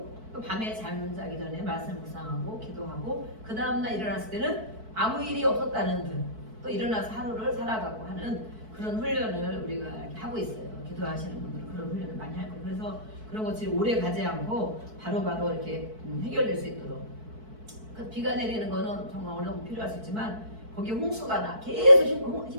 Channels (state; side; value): late; left; 4.6 ms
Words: 또 밤에 잠자기 전에 말씀 묵상하고 기도하고 그 다음날 일어났을 때는 아무 일이 없었다는 듯 또 일어나서 하루를 살아가고 하는 그런 훈련을 우리가 이렇게 하고 있어요. 기도하시는 분들은 그런 훈련을 많이 할 거예요. 그래서 그런 것들이 오래 가지 않고 바로바로 이렇게 해결될 수 있도록. 그 비가 내리는 거는 정말 어느 정도 필요할 수 있지만 거기에 홍수가 나 계속